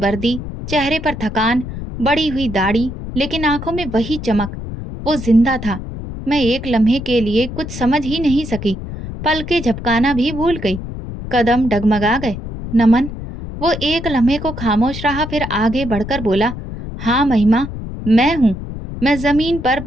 चेहरे पर थकान, बड़ी हुई दाढ़ी, लेकिन आंखों में वही चमक। वो जिंदा था। मैं एक लम्हे के लिए कुछ समझ ही नहीं सकी। पलके झपकाना भी भूल गई। कदम डगमगा गए। नमन। वो एक लम्हे को खामोश रहा, फिर आगे बढ़कर बोला, हाँ महिमा, मैं हूं। मैं जमीन पर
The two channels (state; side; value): noise; left; rumble, 9 dB below the sound